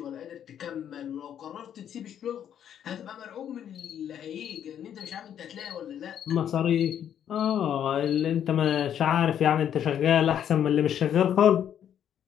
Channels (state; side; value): quieter; right; 9.6 dB